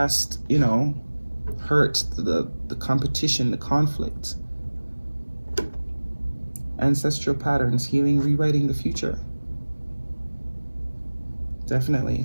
you know, hurt, the competition, the conflict. Ancestral patterns, healing, rewriting the future. Definitely.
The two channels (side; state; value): both; inverted; correlation -1.00